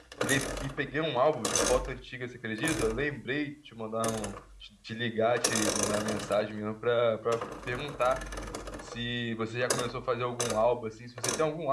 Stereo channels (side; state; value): both; identical; correlation 1.00